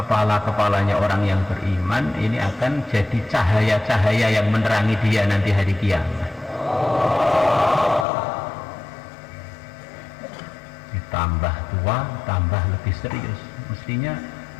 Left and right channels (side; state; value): right; drops out; at 8.1 s